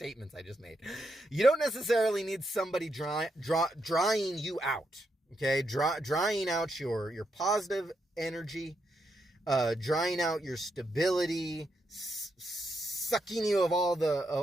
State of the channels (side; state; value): both; normal; correlation 0.81